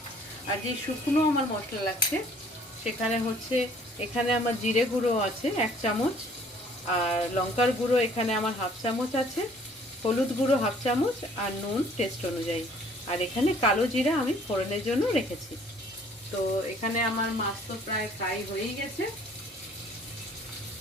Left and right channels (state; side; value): normal; both; correlation 0.57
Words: আর যে শুকনো আমার মশলা লাগছে, সেখানে হচ্ছে এখানে আমার জিরে গুঁড়ো আছে 1 চামচ, আর লঙ্কার গুঁড়ো এখানে আমার 1/2 চামচ আছে, হলুদ গুঁড়ো 1/2 চামচ, আর নুন টেস্ট অনুযায়ী। আর এখানে কালো জিরা আমি ফোড়নের জন্য রেখেছি। তো এখানে আমার মাছ তো প্রায় ফ্রাই হয়েই গেছে।